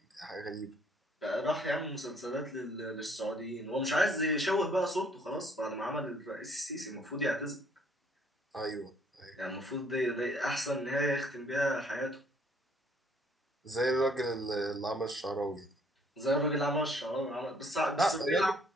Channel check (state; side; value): normal; both; correlation 0.62